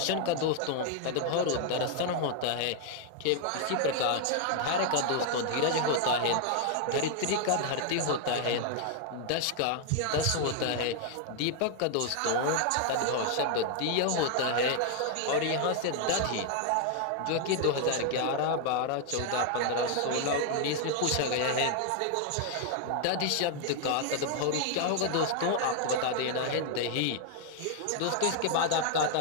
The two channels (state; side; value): different; both; correlation 0.00